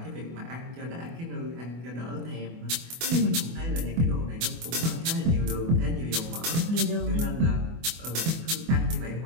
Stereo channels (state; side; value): late; left; 24 ms